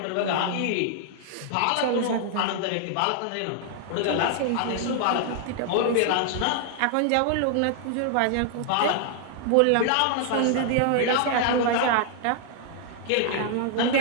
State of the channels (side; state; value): both; different; correlation 0.00